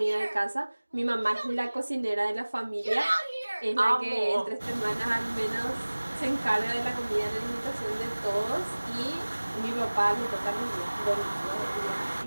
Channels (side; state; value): both; inverted; correlation -1.00